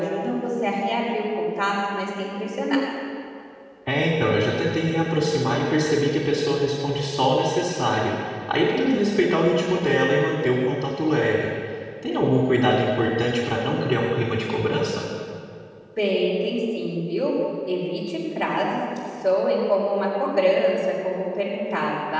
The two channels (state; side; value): identical; both; correlation 1.00